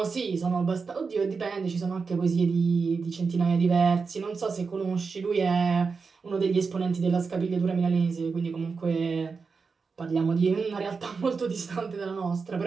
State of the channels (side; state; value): left; quieter; 4.9 dB